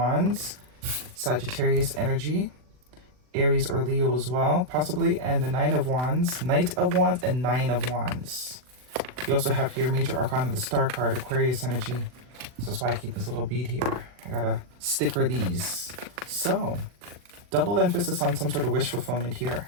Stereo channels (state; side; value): late; left; 40 ms